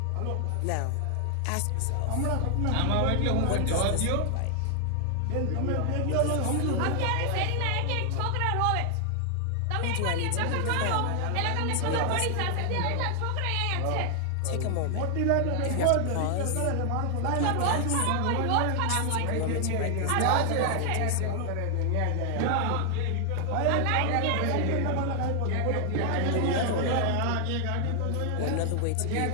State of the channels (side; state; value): both; different; correlation 0.00